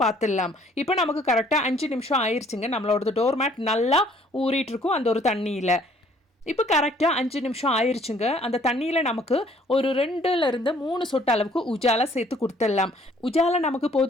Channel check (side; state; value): both; normal; correlation 0.60